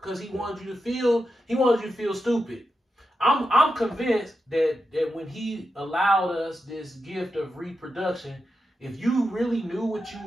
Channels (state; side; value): normal; both; correlation 0.87